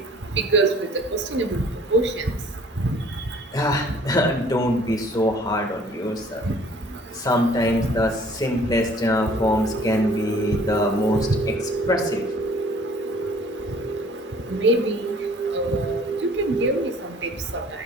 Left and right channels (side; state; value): both; normal; correlation 0.54